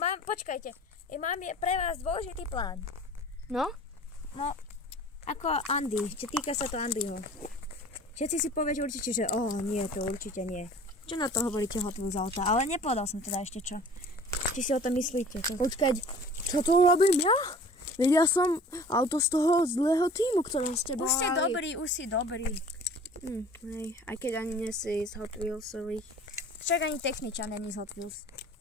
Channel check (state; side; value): normal; both; correlation 0.46